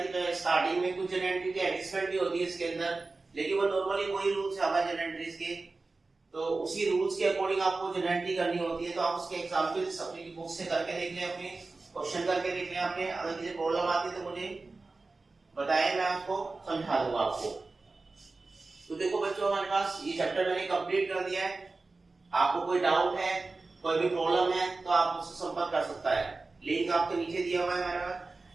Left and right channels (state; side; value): quieter; left; 3.6 dB